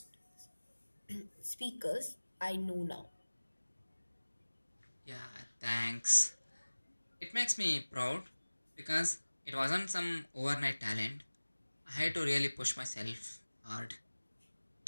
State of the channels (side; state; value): both; inverted; correlation -1.00